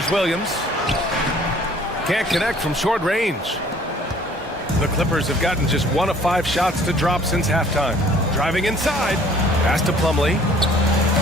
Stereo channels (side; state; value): both; normal; correlation 0.55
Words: Williams. Can't connect from short range. The Clippers have gotten just 1 of 5 shots to drop since halftime. Driving inside. Pass to Plumlee.